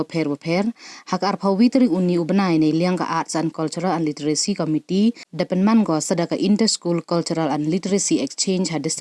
hak arpau witri uni ubenai ne liang ka Arts and Cultural and Literacy Committee depenman go sadaka Inter School Cultural and Literacy Exchange ha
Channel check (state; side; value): identical; both; correlation 1.00